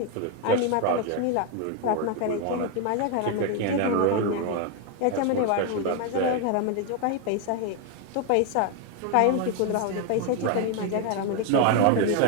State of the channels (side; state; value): both; different; correlation 0.01